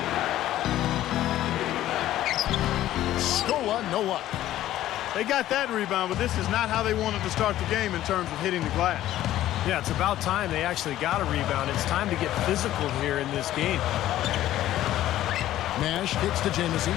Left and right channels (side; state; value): right; quieter; 13.6 dB